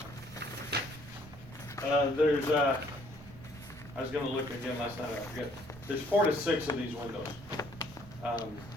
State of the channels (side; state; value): right; noise; rumble, 20 dB below the sound